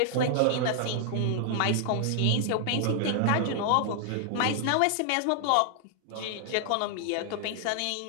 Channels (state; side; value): different; both; correlation 0.00